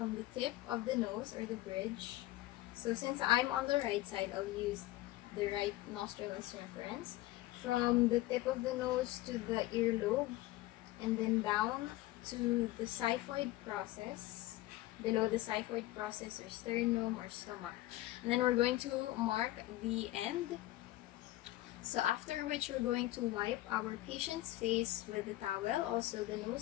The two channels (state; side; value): quieter; right; 16.7 dB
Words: the tip of the nose or the bridge. So since I'm on the right side, I'll use the right nostril as reference. From the tip of the nose to the earlobe, and then down to the xiphoid process, below the xiphoid process or sternum or stomach. And then we're going to mark the end. So after which we're going to wipe our patient's face with the towel, also the